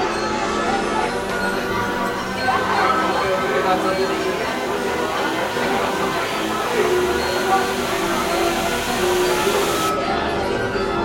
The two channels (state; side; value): identical; both; correlation 1.00